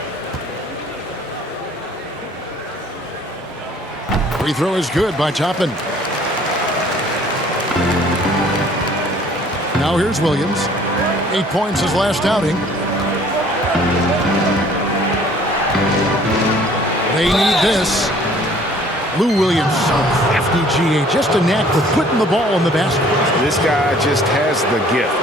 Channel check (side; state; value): both; normal; correlation 0.55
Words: Free throw is good by Toppin. Now here's Williams. 8 points his last outing. They need this. Lou Williams, so crafty GA. Just a knack for putting the ball in the basket. This guy just has the gift.